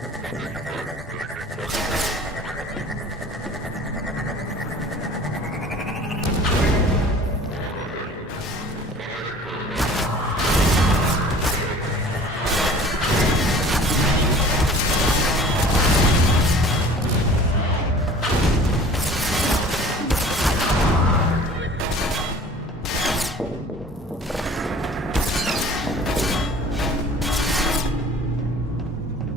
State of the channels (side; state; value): both; normal; correlation 0.46